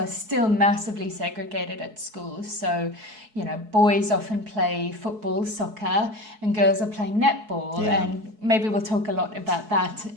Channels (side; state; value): left; late; 4.7 ms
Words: still massively segregated at schools. So, boys often play football, soccer, and girls are playing netball. Yeah. And maybe we'll talk a lot about that